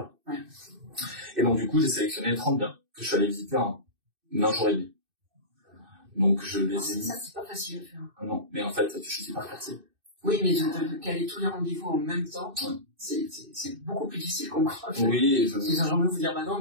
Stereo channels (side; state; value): left; late; 2.6 ms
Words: Ouais. Et donc du coup, j'ai sélectionné 30 biens que je suis allé visiter en un jour et demi. Donc je les ai mis. Ça, c'est pas facile à faire. Non, mais en fait, tu choisis par quartier. Oui, mais de caler tous les rendez-vous en même temps, c'est beaucoup plus difficile qu'on croit. Oui, j'ai envie de vous dire, bah non,